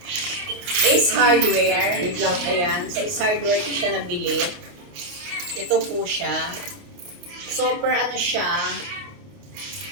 Ace Hardware. Wait lang. Ayan, sa Ace Hardware ko siya nabili. Ito po siya. Super ano siya.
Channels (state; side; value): late; left; 28 ms